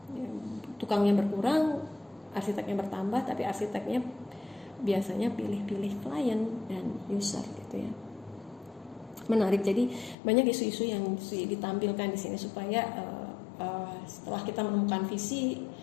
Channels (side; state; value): right; drops out; at 10.2 s